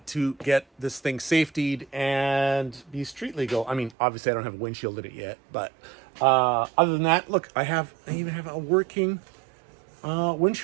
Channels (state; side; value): drops out; left; at 4.0 s